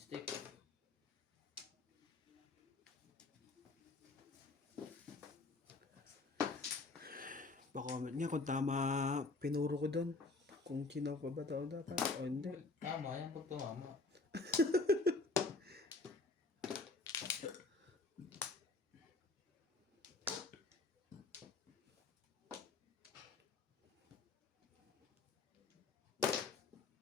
Pa-comment niya kung tama pinuro ko doon. Kung kinaw pa ba daw dapat o hindi. Tama yan pag tumama.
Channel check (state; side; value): quieter; right; 3.6 dB